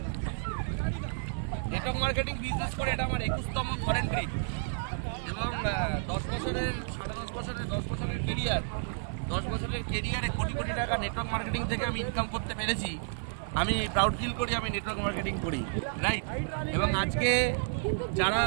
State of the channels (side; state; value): left; silent; digital silence